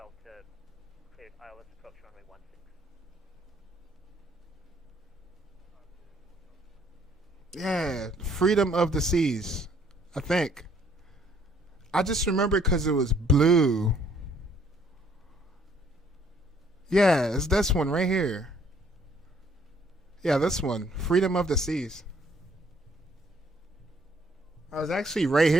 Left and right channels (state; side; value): normal; both; correlation 0.64